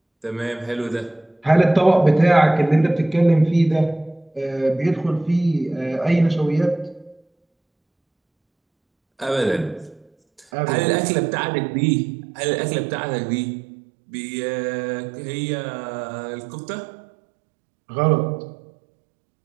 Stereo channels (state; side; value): drops out; left; at 10.5 s